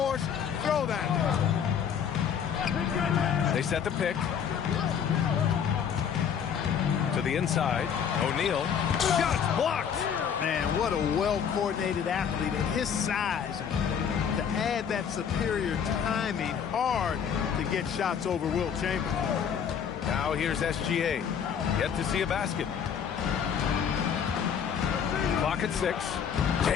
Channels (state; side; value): quieter; right; 7.7 dB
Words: throw that. They set the pick. To the inside. O'Neal. Shot blocked. Man, what a well-coordinated athlete at his size. To add that superior timing, hard to get shots over Wilt Chamberlain. Now here's SGA. Yet to see a basket. Clock at 6.